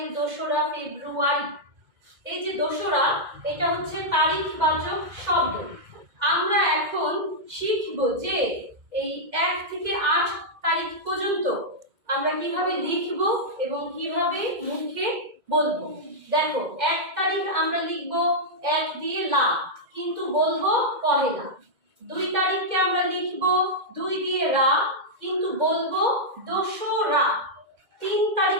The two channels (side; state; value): left; late; 2.0 ms